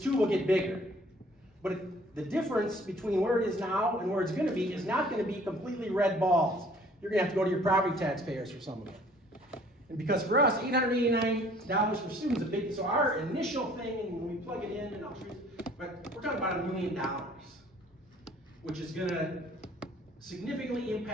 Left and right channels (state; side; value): normal; both; correlation 0.55